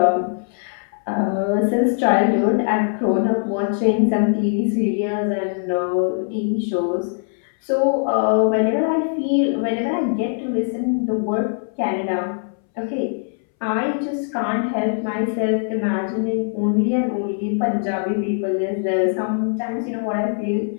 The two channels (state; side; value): silent; right; 63 dB below the other